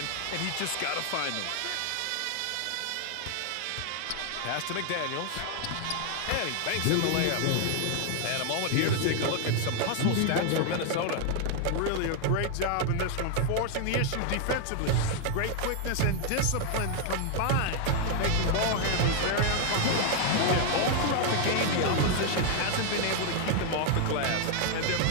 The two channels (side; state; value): both; different; correlation 0.00